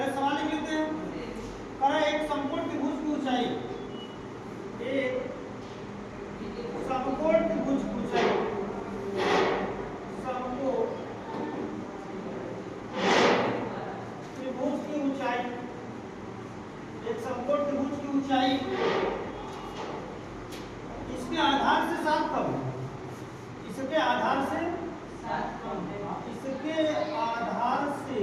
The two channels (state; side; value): identical; both; correlation 1.00